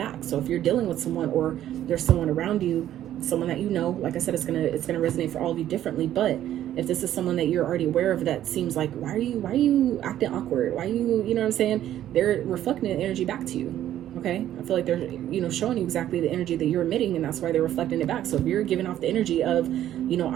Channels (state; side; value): quieter; left; 12.0 dB